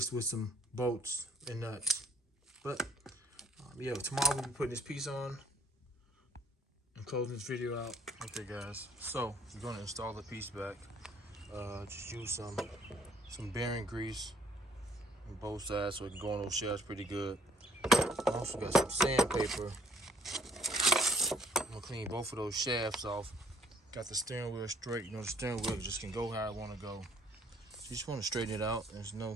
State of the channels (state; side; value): normal; both; correlation 0.61